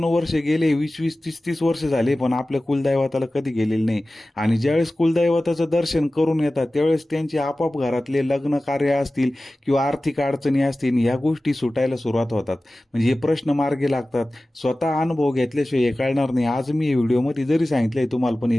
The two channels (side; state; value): both; normal; correlation 0.96